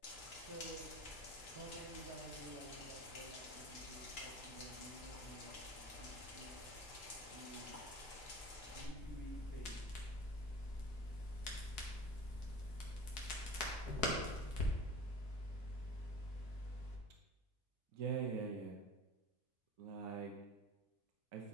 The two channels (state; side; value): normal; both; correlation 0.38